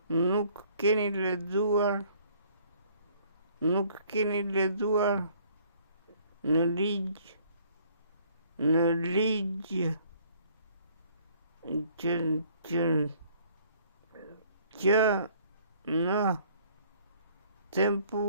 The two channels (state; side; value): inverted; both; correlation -0.60